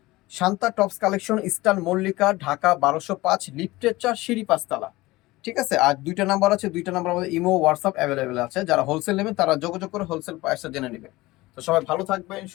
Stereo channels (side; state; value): right; quieter; 19.8 dB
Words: Shanta tops collection, eastern Mallika, Dhaka 1205, লিফটের 4, সিঁড়ি 5 তলা, ঠিক আছে? আর দুইটা নাম্বার আছে, দুইটা নাম্বার আমাদের ইমো হোয়াটসঅ্যাপ অ্যাভেলেবেল আছে। যারা হোলসেল নেবেন তারা যোগাযোগ করে হোলসেল প্রাইসটা জেনে নেবেন। তো সবাই ভালো থাকবেন,